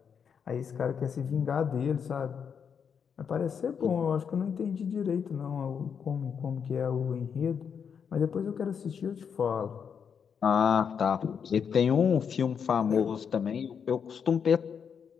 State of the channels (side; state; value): right; quieter; 7.0 dB